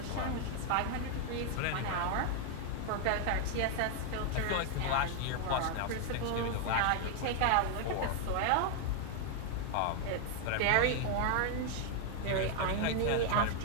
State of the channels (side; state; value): both; different; correlation 0.00